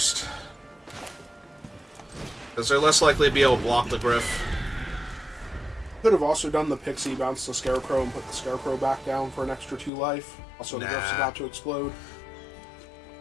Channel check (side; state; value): right; drops out; at 9.9 s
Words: Because they're less likely to be able to block the Griff. Could have also done the Pixie, bounce the Scarecrow, and put the Scarecrow back down for an extra 2 life. Also, the Griff's about to explode.